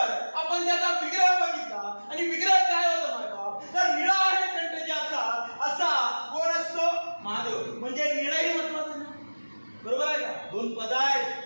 आपण त्याचा विग्रह बघितला आणि विग्रह काय होता माय बाप? तर निळा आहे कंठ ज्याचा असा कोण असतो? महादेव। म्हणजे निळाही महत्वाचं नाही। बरोबर आहे का? दोन पद आहेत,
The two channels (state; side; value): inverted; both; correlation -1.00